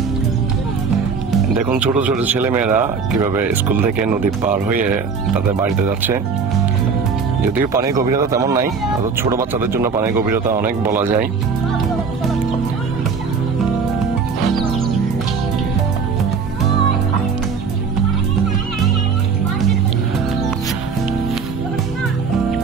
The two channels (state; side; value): quieter; left; 5.5 dB